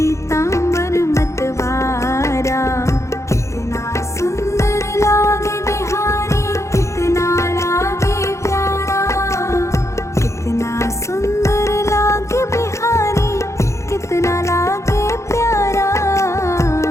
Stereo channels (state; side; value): late; right; 0.14 ms